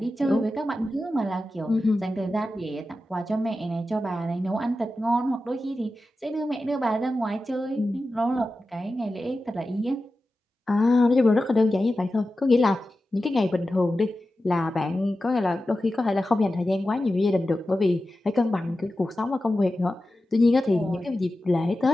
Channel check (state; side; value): normal; both; correlation 0.93